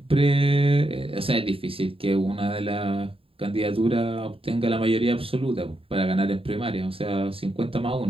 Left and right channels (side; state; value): left; late; 0.27 ms